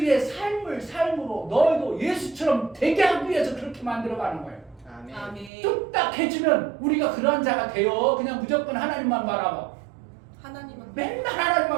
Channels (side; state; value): left; drops out; at 5.5 s